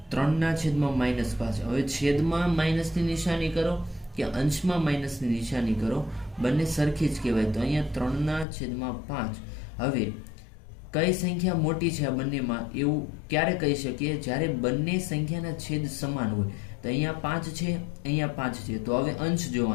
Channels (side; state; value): right; drops out; at 8.5 s